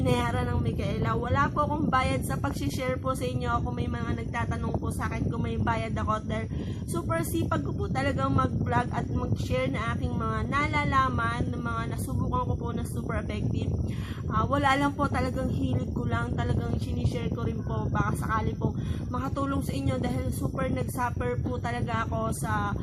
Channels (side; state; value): both; identical; correlation 1.00